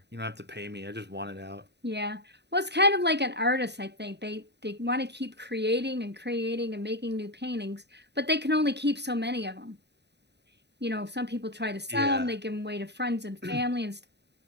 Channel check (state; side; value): late; left; 0.50 ms